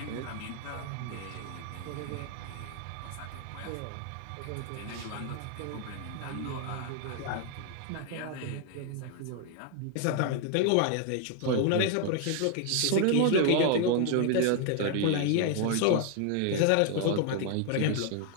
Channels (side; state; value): both; different; correlation 0.00